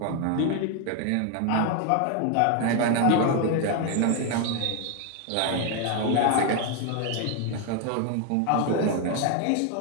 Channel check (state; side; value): different; both; correlation 0.01